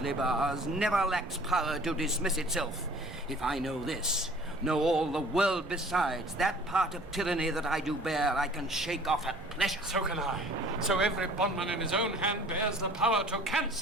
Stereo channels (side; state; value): both; normal; correlation 0.50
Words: bars, never lacks power to dismiss itself. If I know this, know all the world besides, that part of tyranny that I do bear, I can shake off at pleasure. So can I. So every bondman in his own hand bears the power to